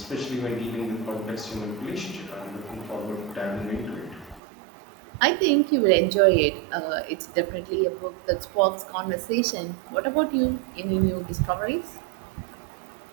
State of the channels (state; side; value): drops out; left; at 4.4 s